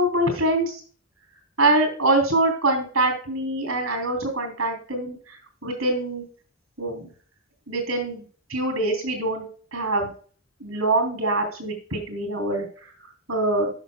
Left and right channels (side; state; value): both; normal; correlation -0.19